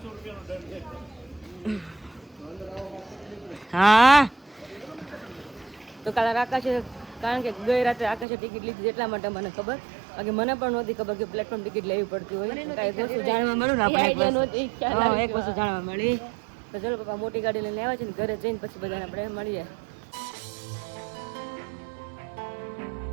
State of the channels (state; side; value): drops out; left; at 8.2 s